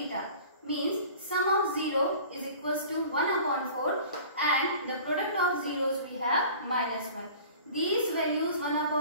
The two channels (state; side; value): inverted; both; correlation -0.43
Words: means sum of 0 is equals to 1 upon 4 and the product of zeros we have minus 1. These values 1